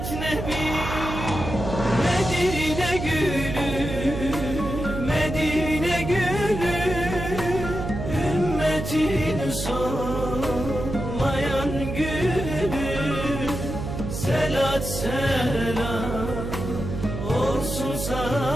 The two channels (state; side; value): noise; right; hum, 5 dB below the sound